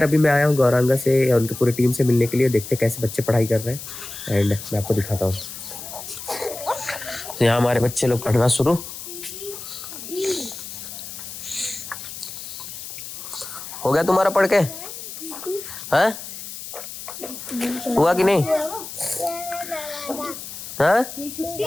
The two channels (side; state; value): left; noise; hiss, 10 dB below the sound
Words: अभी मैं आया हूँ गौरांगा से या उनकी पूरी टीम से मिलने के लिए। देखते कैसे बच्चे पढ़ाई कर रहे हैं, एंड मैं आपको दिखाता हूँ। यहाँ हमारे बच्चे लोग पढ़ना शुरू। हो गया तुम्हारा पढ़ के? हाँ हुआ कि नहीं? हाँ